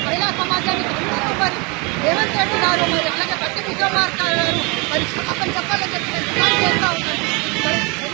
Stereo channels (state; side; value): quieter; left; 29.4 dB